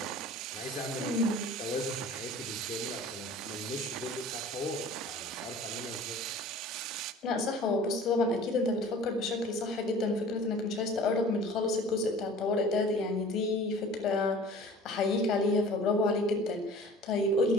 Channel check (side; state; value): both; normal; correlation 0.45